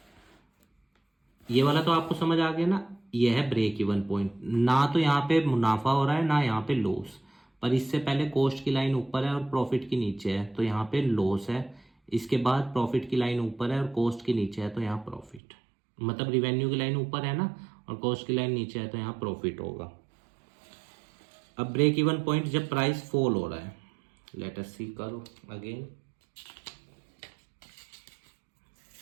ये वाला तो आपको समझ आ गया ना, ये है ब्रेक इवन पॉइंट। ना तो यहाँ पे मुनाफा हो रहा है ना यहाँ पे लॉस, पर इससे पहले कॉस्ट की लाइन ऊपर है और प्रॉफिट की नीचे है, तो यहाँ पे लॉस है। इसके बाद प्रॉफिट की लाइन ऊपर है और कॉस्ट की नीचे है, तो यहाँ प्रॉफिट, मतलब रिवेन्यू की लाइन ऊपर है ना और कॉस्ट की लाइन नीचे है, तो यहाँ प्रॉफिट होगा। अब ब्रेक इवन पॉइंट जब प्राइस फॉल हो रहा है, लेट अस सी करो अगेन।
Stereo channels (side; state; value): left; drops out; at 15.4 s